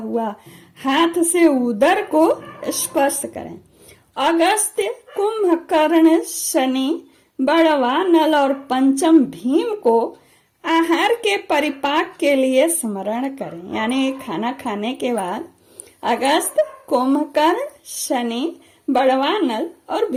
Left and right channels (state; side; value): identical; both; correlation 1.00